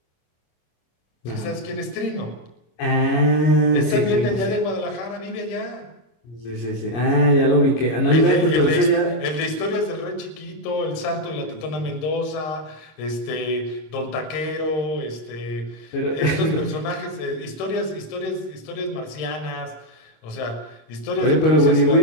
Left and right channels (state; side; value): late; right; 25 ms